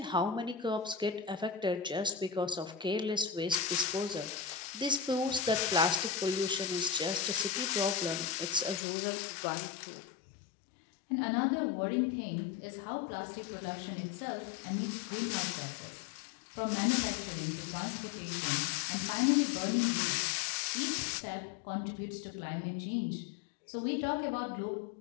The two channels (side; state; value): right; drops out; at 8.8 s